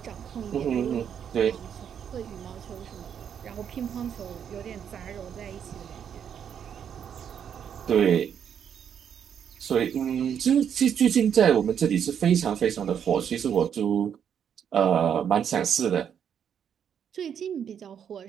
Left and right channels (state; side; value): quieter; left; 8.3 dB